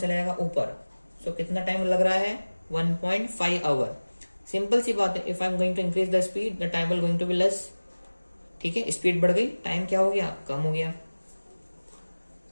जाएगा? ऊपर। सो कितना टाइम लग रहा है? 1.5 आवर। सिंपल सी बात है, if I am going to increase the speed the time will going to be less. ठीक है, स्पीड बढ़ गई, टाइम क्या हो गया? कम हो गया।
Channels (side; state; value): both; inverted; correlation -1.00